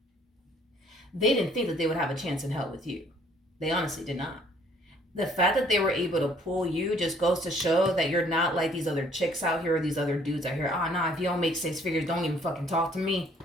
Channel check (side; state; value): both; normal; correlation 0.60